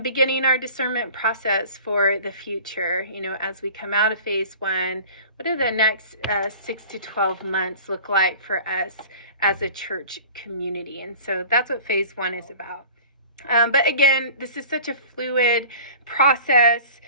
beginning our discernment process for the future. As we come out of phase one, what do the next 6 to 12 months look like for us as a church community? And so that's what phase one is about. But again, this is such a fluid process.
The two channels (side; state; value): both; inverted; correlation -0.43